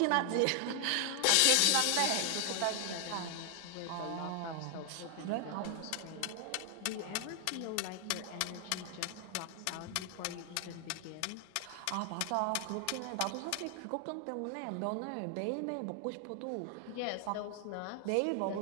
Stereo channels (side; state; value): both; different; correlation 0.00